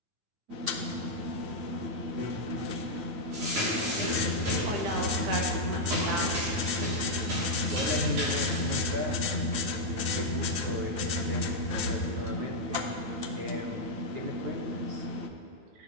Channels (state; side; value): late; left; 9.0 ms